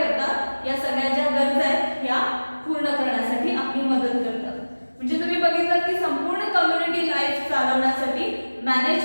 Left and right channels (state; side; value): inverted; both; correlation -1.00